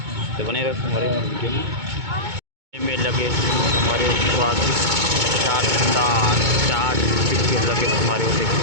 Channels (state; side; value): late; left; 2.2 ms